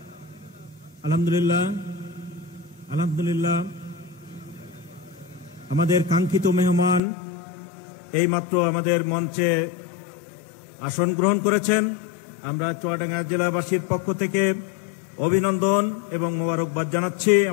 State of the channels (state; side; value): drops out; right; at 7.0 s